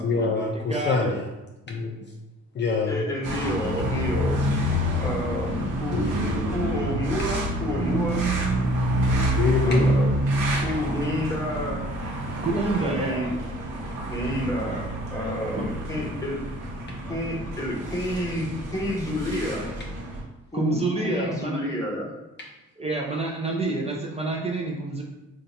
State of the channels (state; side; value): normal; both; correlation 0.52